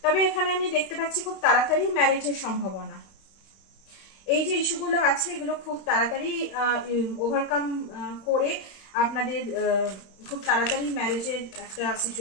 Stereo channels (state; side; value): late; right; 31 ms